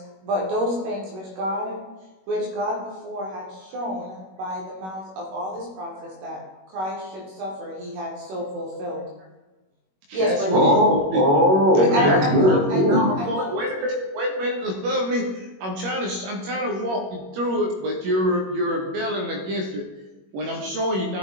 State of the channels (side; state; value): left; late; 21 ms